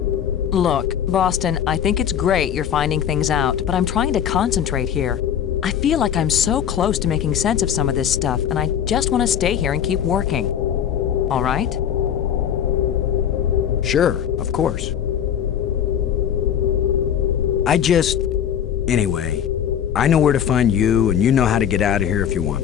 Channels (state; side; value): quieter; right; 9.2 dB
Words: Look, Boston, I think it's great you're finding things out, but I'm trying to concentrate here. I feel like I'm so close to making sense of some of this stuff, and I just want to stay here and keep working. All right? Sure, of course. Anyway, I know where to find you, and you know how to get out of here if you